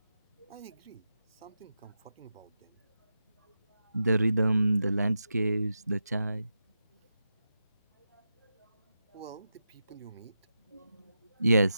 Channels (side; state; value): both; inverted; correlation -0.89